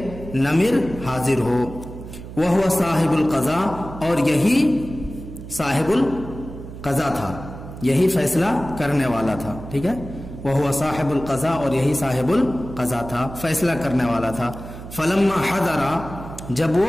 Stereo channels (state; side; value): noise; right; hum, 12 dB below the sound